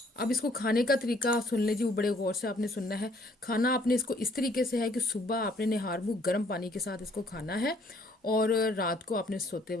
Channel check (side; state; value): both; normal; correlation 0.63